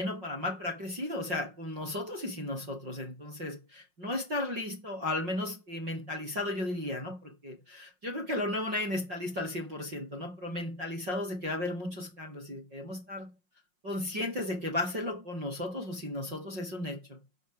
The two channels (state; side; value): late; left; 5.5 ms